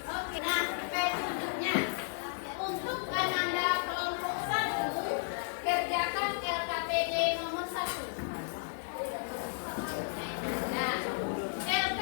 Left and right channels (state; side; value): silent; right; digital silence